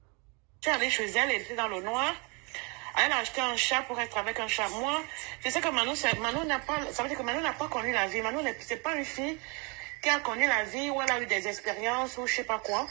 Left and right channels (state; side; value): quieter; left; 31.5 dB